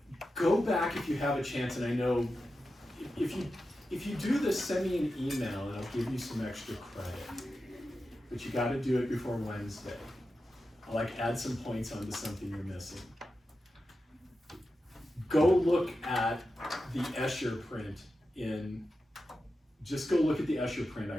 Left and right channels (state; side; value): normal; both; correlation 0.91